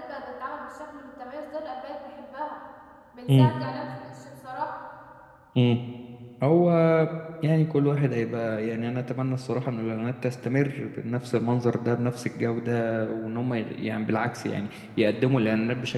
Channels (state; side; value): identical; both; correlation 1.00